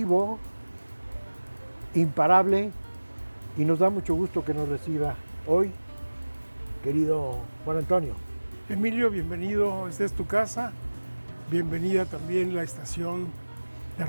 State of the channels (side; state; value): both; inverted; correlation -1.00